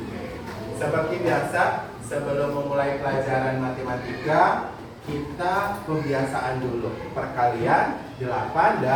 Seperti biasa, sebelum memulai pelajaran matematika, kita kebiasaan dulu. Perkalian 8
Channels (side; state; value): both; identical; correlation 1.00